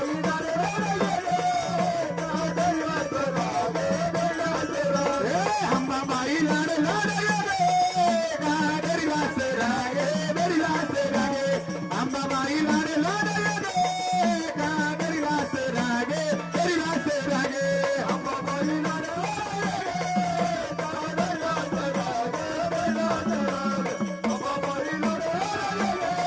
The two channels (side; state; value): both; identical; correlation 1.00